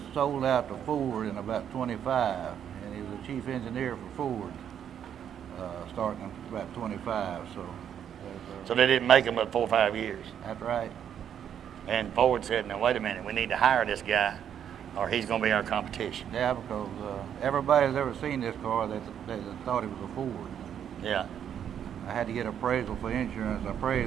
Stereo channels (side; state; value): left; quieter; 9.1 dB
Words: sold out to Ford in about 25, and he was the chief engineer for Ford starting in about 25. So they didn't make them but 4 or 5 years. That's right. And Ford said, now wait a minute, we need to hire this guy or he's going to be our competition. Yeah, because everybody that's ever seen this car, they thought it was a Ford. Yeah. I had to get appraisal for insurance.